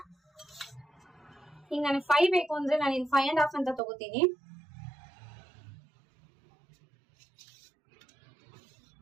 ಈಗ ನನಗೆ 5 ಬೇಕು ಅಂದ್ರೆ ನಾನು ಇಲ್ಲಿ 5.5 ಅಂತ ತಗೋತೀನಿ.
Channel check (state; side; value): drops out; left; at 3.8 s